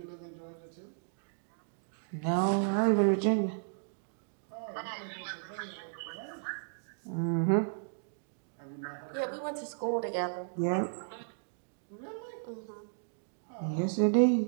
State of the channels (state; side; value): silent; left; digital silence